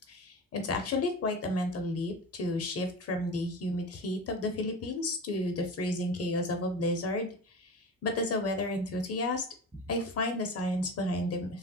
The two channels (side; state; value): both; normal; correlation 0.31